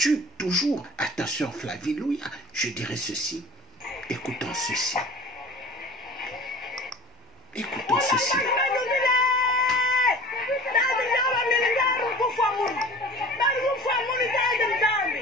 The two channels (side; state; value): both; normal; correlation 0.42